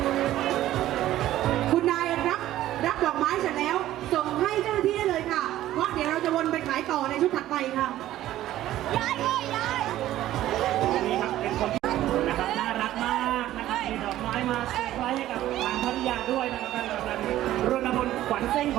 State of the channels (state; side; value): quieter; left; 13.9 dB